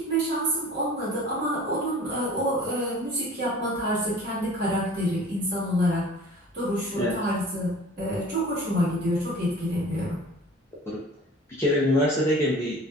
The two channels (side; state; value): both; normal; correlation 0.45